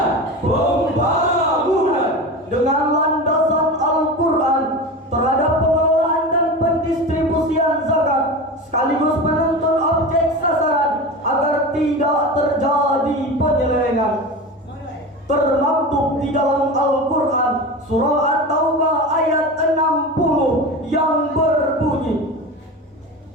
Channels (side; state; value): both; normal; correlation 0.28